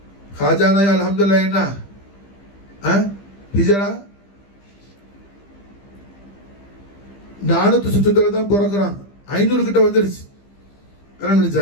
खाजा நாய் அல்ஹம்துலில்லாஹ் என்ன ஹிஜ்ரா 400 சுற்றத்துல தான் பிறக்கிறான், 500 கிட்ட வந்துருச்சு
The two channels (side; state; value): right; late; 15 ms